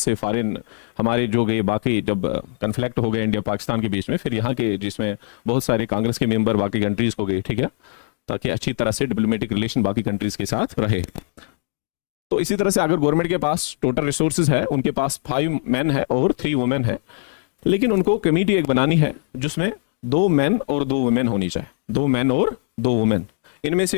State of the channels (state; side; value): silent; right; 63 dB below the other